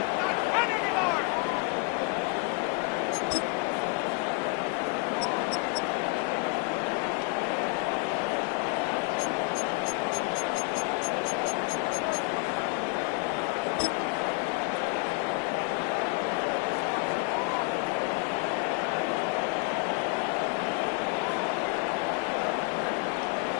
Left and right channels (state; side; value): quieter; right; 30.3 dB